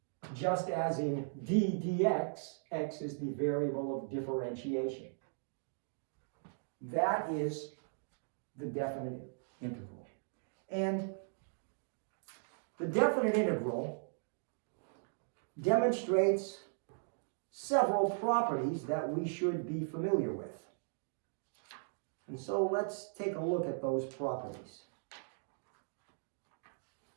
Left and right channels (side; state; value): left; silent; digital silence